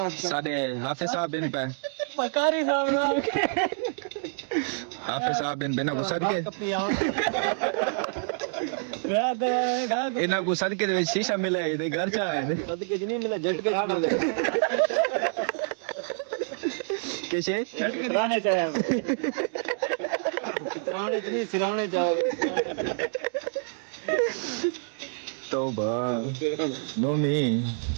साडे हाफिज साहब बिन पे पकारी साहब ना हाफिज साहब बिन बिना को सदके रात इना को सदके दे विच शीशा मिले दे घर चा है सदके नहीं मिला झटके मिले कैसे रहने चाहिए कितराने नहीं सिराने जाओ तौबा नोमी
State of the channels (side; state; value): left; silent; digital silence